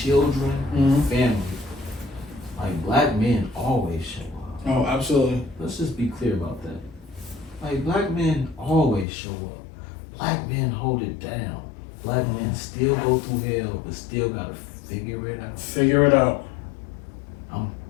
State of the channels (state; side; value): drops out; right; at 9.1 s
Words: family. Like black men always show up. Oh, absolutely. Let's just be clear about that. Like black men always show up. Black men hold it down. Black men still go through hell, but still gotta figure it out. Figure it out. I'm